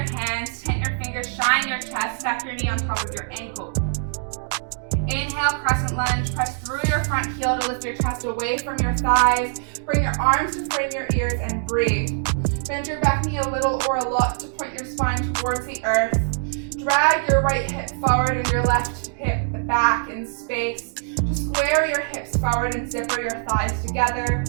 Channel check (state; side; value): silent; left; digital silence